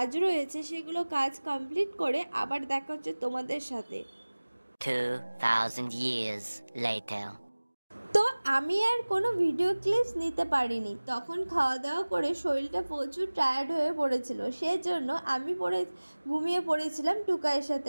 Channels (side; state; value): both; inverted; correlation -1.00